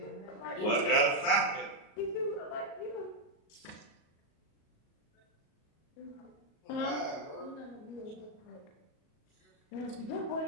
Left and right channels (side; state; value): right; late; 37 ms